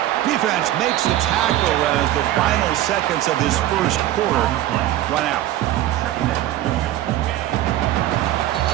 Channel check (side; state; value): left; quieter; 13.8 dB